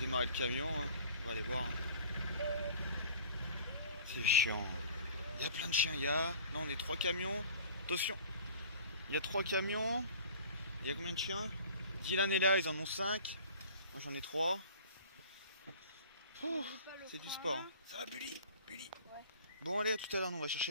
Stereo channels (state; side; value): inverted; both; correlation -0.45